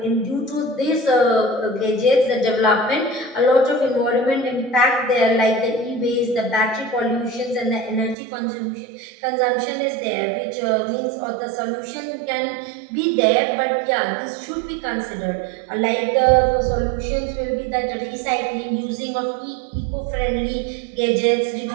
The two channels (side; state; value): left; drops out; at 8.2 s